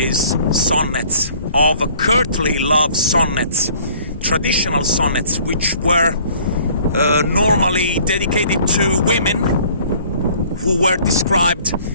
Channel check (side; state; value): both; inverted; correlation -0.54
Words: sonnets, of courtly love sonnets, traditional sonnets, which were normally dedicated to women who were described